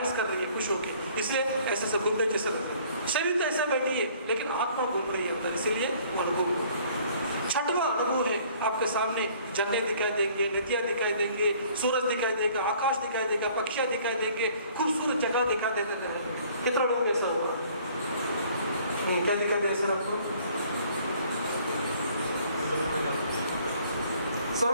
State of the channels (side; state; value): both; inverted; correlation -0.57